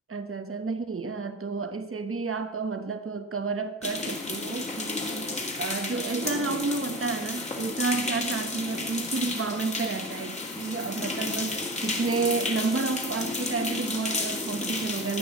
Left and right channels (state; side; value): normal; both; correlation 0.31